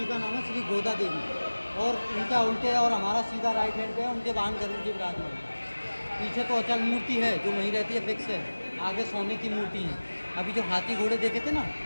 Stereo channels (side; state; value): both; inverted; correlation -1.00